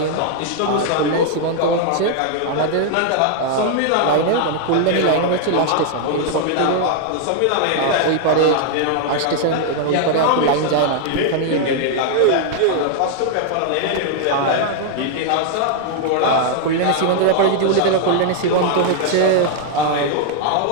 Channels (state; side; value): different; both; correlation 0.00